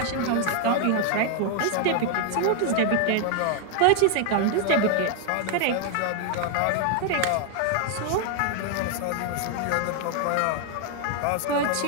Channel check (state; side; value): different; both; correlation 0.00